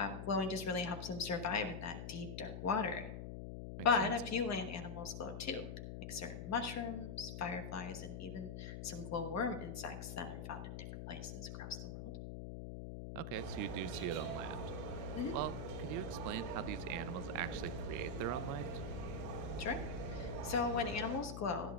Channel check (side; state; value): left; noise; hum, 6 dB below the sound